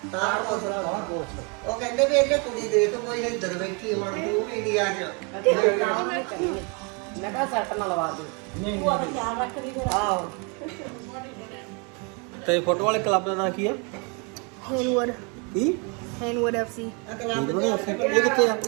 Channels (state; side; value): quieter; left; 33.9 dB